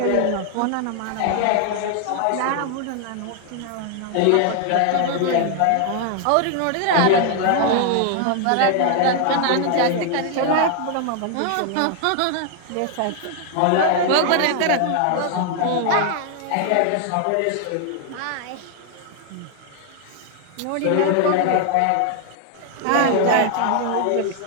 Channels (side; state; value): both; different; correlation 0.00